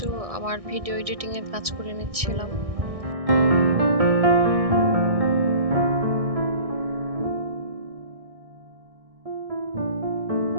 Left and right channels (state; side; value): late; left; 1.6 ms